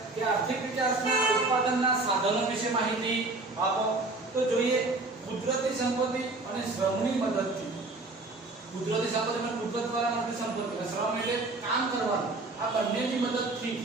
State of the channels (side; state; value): left; quieter; 3.2 dB